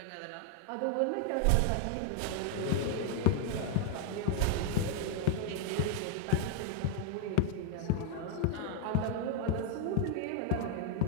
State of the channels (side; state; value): both; different; correlation 0.00